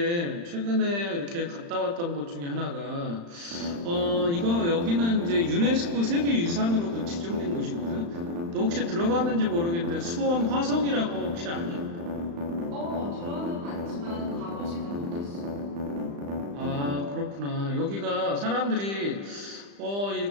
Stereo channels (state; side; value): late; left; 35 ms